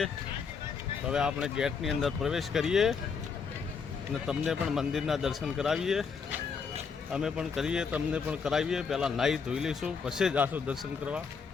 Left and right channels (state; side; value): quieter; right; 5.7 dB